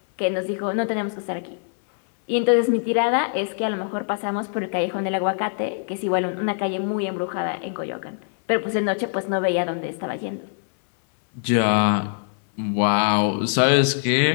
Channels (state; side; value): silent; right; 63 dB below the other